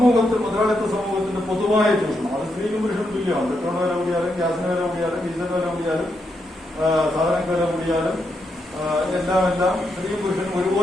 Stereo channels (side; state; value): both; normal; correlation 0.82